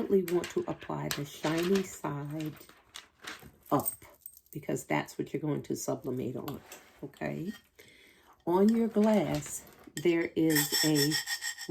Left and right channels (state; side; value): identical; both; correlation 1.00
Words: want to apply the shiny side up because that's what you're going to sublimate on, okay? On your glass, there is a